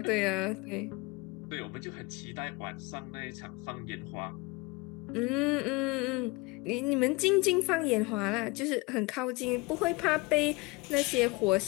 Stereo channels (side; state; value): right; quieter; 24.9 dB